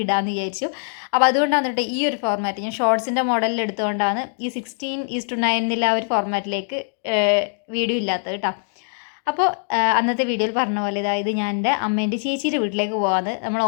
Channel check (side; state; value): right; silent; 64 dB below the other